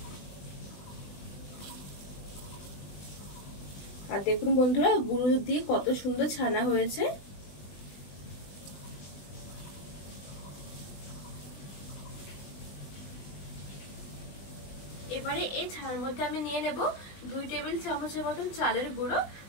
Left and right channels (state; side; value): late; right; 20 ms